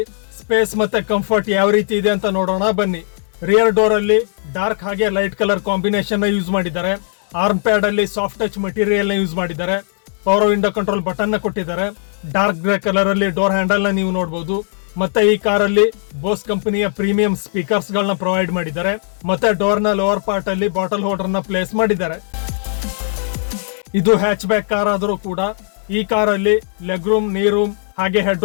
ಸ್ಪೇಸ್ ಮತ್ತೆ ಕಂಫರ್ಟ್ ಯಾವ ರೀತಿ ಇದೆ ಅಂತ ನೋಡೋಣ ಬನ್ನಿ. ರಿಯರ್ ಡೋರ್ ಅಲ್ಲಿ ಡಾರ್ಕ್ ಹಾಗೆ ಲೈಟ್ ಕಲರ್ ಕಾಂಬಿನೇಷನ್ ನ ಯೂಸ್ ಮಾಡಿದ್ದಾರೆ. ಆರ್ಮ್ ಪ್ಯಾಡ್ ಅಲ್ಲಿ ಸಾಫ್ಟ್ ಟಚ್ ಮೆಟೀರಿಯಲ್ ನ ಯೂಸ್ ಮಾಡಿದ್ದಾರೆ. ಪವರ್ ವಿಂಡೋ ಕಂಟ್ರೋಲ್ ಬಟನ್ ನ ಕೊಟ್ಟಿದ್ದಾರೆ. ಡಾರ್ಕ್ ಗ್ರೇ ಕಲರ್ ಅಲ್ಲಿ ಡೋರ್ ಹ್ಯಾಂಡಲ್ ನ ನೀವು ನೋಡಬಹುದು. ಮತ್ತೆ ಈ ಕಾರಲ್ಲಿ ಬೋಸ್ ಕಂಪನಿಯ ಪ್ರೀಮಿಯಂ ಸ್ಪೀಕರ್ಸ್ ಗಳನ್ನ ಪ್ರೊವೈಡ್ ಮಾಡಿದ್ದಾರೆ. ಮತ್ತೆ ಡೋರ್ ನ ಲೋವರ್ ಪಾರ್ಟ್ ಅಲ್ಲಿ ಬಾಟಲ್ ಹೋಲ್ಡರ್ ನ ಪ್ಲೇಸ್ ಮಾಡಿದ್ದಾರೆ. ಇದು ಹ್ಯಾಚ್ ಬ್ಯಾಕ್ ಕಾರ್ ಆದರೂ ಕೂಡ ಈ ಕಾರಲ್ಲಿ ಲೆಗ್ ರೂಮ್, ನೀ ರೂಮ್ ಹಾಗೆ ಹೆಡ್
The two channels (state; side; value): silent; right; digital silence